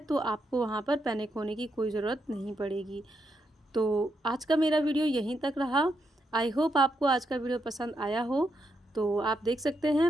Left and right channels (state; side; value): normal; both; correlation 0.81